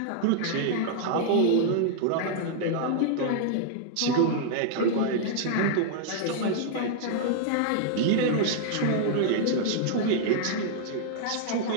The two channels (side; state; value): both; different; correlation -0.01